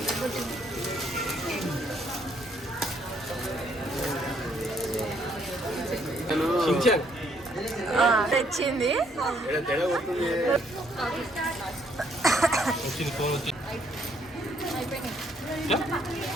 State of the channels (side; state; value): both; normal; correlation 0.68